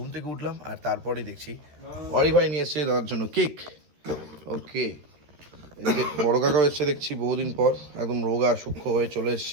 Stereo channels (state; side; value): late; left; 14 ms